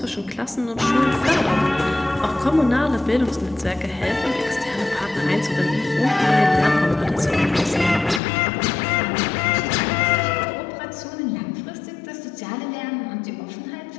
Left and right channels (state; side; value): drops out; right; at 8.2 s